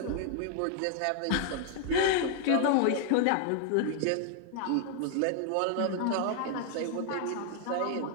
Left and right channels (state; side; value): different; both; correlation 0.00